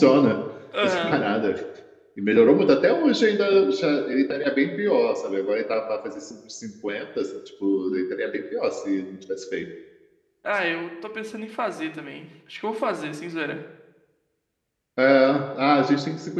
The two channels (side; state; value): both; identical; correlation 1.00